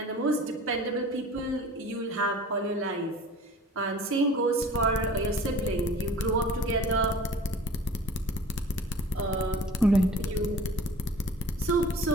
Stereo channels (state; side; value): normal; both; correlation 0.45